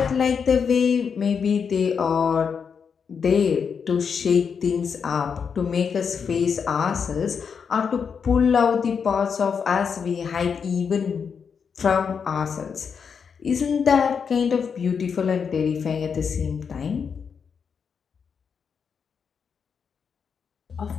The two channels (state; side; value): quieter; right; 6.4 dB